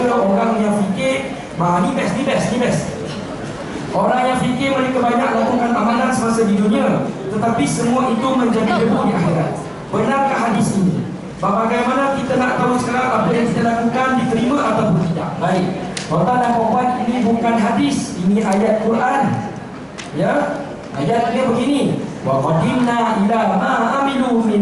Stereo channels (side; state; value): both; identical; correlation 1.00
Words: orang yang fikir, ni best. Orang yang fikir mereka banyak lakukan amalan semasa di dunia, tetapi semua itu menjadi debu di akhirat. Benarkah hadis ini? Bagaimana kita nak tahu sekarang apa yang kita lakukan diterima ataupun tidak? Baik, tuan-tuan dan puan, ini bukan hadis, ini ayat Quran. Ya, ayat dia begini: wa qadimna ila ma amilu